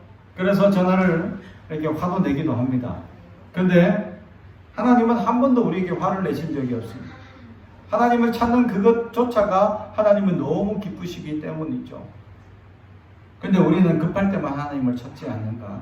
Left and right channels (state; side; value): identical; both; correlation 1.00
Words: 그래서 전화를 이렇게 화도 내기도 합니다. 그런데 하나님은 한 번도 우리에게 화를 내신 적이 없습니다. 하나님을 찾는 그것조차가 하나님은 너무 기쁘시기 때문이죠. 근데 우리는 급할 때만 하나님을 찾지 않는가?